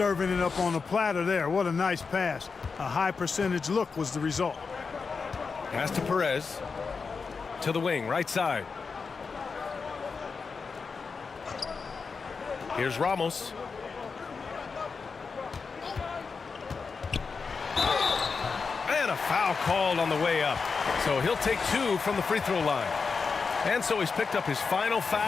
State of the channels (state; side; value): quieter; right; 5.0 dB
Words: it up on the platter there. What a nice pass. A high percentage look was the result. Pass to Perez. To the wing, right side. Here's Ramos. And a foul called on the way up. So he'll take 2 from the free throw line. And so he's picked up his final